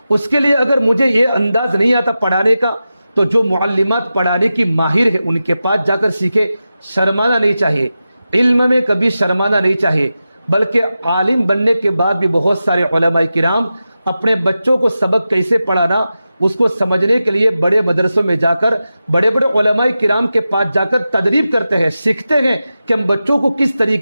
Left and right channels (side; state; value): both; inverted; correlation -0.92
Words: اس کے لیے اگر مجھے یہ انداز نہیں آتا پڑھانے کا تو جو معلمات پڑھانے کی ماہر ہے ان کے پاس جا کر سیکھے. شرمانا نہیں چاہیے، علم میں کبھی شرمانا نہیں چاہیے، بلکہ عالم بننے کے بعد بھی بہت سارے علماء کرام اپنے بچوں کو سبق کیسے پڑھانا اس کو سمجھنے کے لیے بڑے مدرسوں میں جا کر بڑے بڑے علماء کرام کے پاس جا کر تدریب کرتے ہیں، سیکھتے ہیں کہ ہم بچوں کو کس